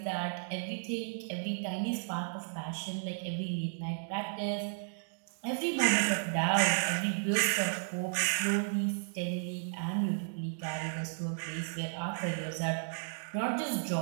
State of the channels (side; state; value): left; silent; digital silence